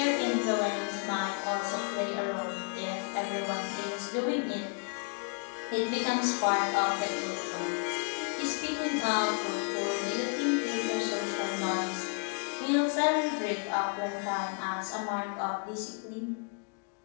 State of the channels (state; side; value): quieter; right; 38.1 dB